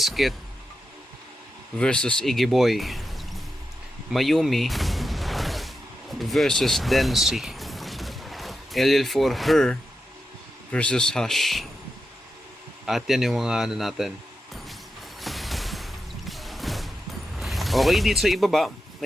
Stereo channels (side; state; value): both; normal; correlation 0.88